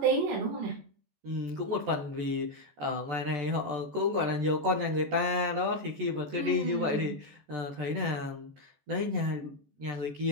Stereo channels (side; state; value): left; late; 14 ms